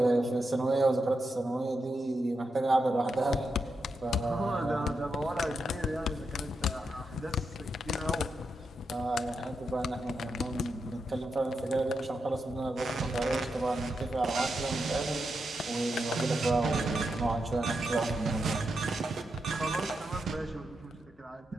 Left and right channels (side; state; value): both; normal; correlation 0.85